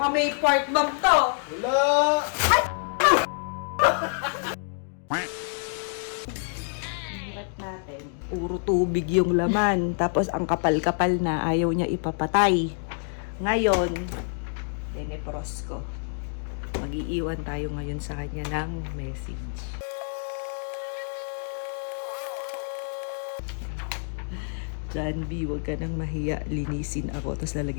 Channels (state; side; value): silent; right; 60 dB below the other